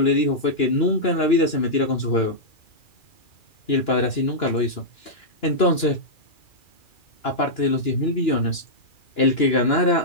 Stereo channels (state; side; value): late; right; 2.9 ms